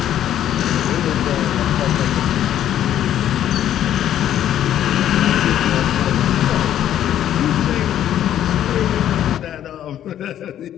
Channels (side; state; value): right; quieter; 11.2 dB